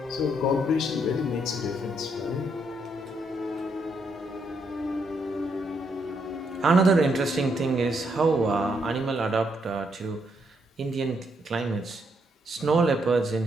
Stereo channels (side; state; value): both; normal; correlation 0.76